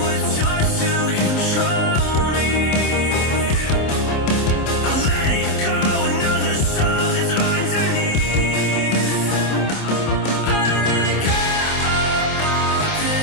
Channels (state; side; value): late; right; 27 ms